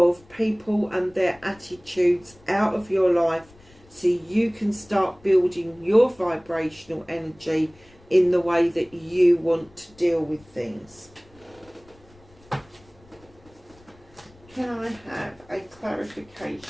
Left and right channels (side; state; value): left; noise; rumble, 27 dB below the sound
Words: people and their attitudes out of your life, so you can start building your vibrational energy in the way that you want to deal with things. Can I have a